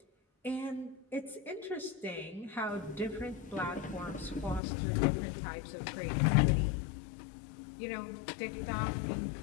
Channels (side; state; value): right; drops out; at 4.6 s